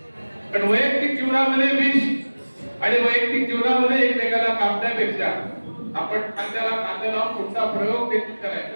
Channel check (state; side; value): inverted; both; correlation -1.00